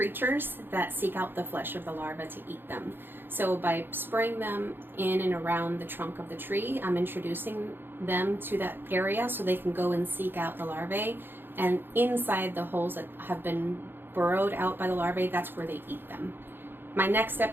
that seek out the flesh of the larva to eat them. So by spraying them in and around the trunk of the tree, I'm introducing them to that area so they can go and seek out the larvae. And inside the holes that have been burrowed out by the larvae, that's where they eat them. My next step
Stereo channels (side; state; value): left; late; 0.10 ms